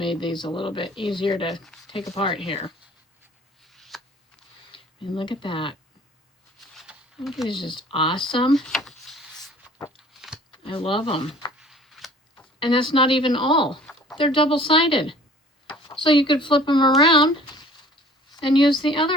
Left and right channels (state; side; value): normal; both; correlation 0.50